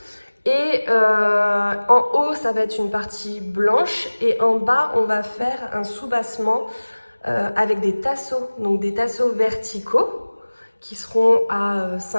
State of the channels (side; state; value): both; inverted; correlation -1.00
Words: Et en haut ça va être une partie blanche et en bas on va faire un soubassement avec des tasseaux, donc des tasseaux verticaux qui seront à